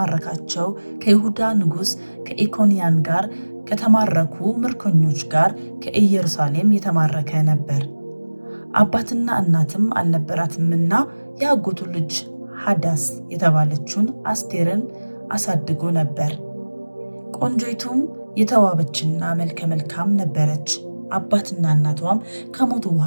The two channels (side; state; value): both; inverted; correlation -1.00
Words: ከይሁዳ ንጉሥ ከኢኮንያን ጋር ከተማረኩ ምርኮኞች ጋር ከኢየሩሳሌም የተማረከ ነበር። አባትና እናትም አልነበራትምና የአጎቱ ልጅ ሐዳስ የተባለችውን አስቴርን አሳድጎ ነበር። ቆንጆይቱም የተዋበችና መልከ መልካም ነበረች። አባትና እናቷም ከሞቱ